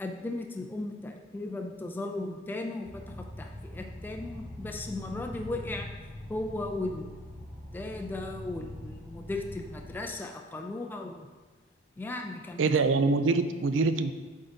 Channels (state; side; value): normal; both; correlation 0.46